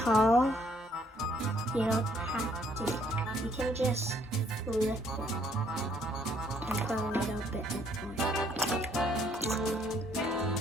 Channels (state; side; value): normal; both; correlation 0.66